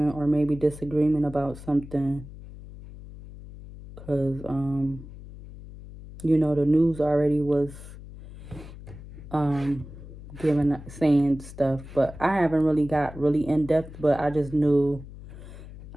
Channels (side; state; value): left; noise; hum, 15 dB below the sound